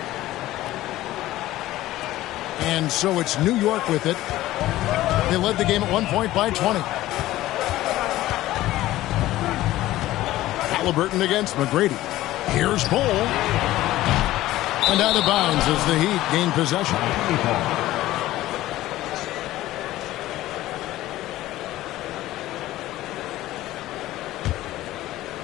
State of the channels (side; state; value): right; quieter; 15.7 dB